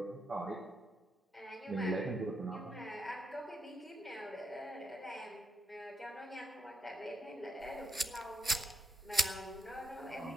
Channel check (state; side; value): normal; both; correlation 0.80